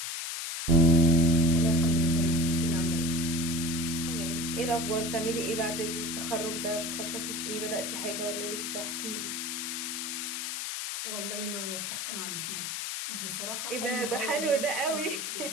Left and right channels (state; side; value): noise; left; hiss, 4 dB below the sound